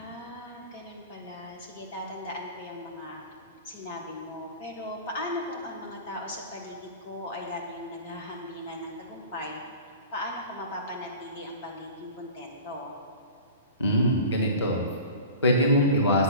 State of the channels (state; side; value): inverted; both; correlation -0.38